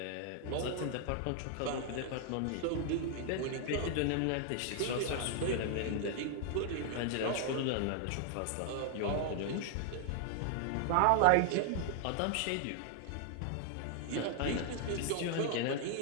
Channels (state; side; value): different; both; correlation 0.00